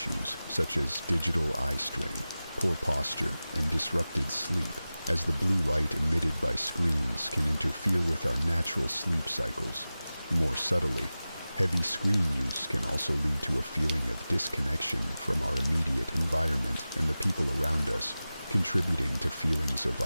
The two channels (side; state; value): both; inverted; correlation -0.96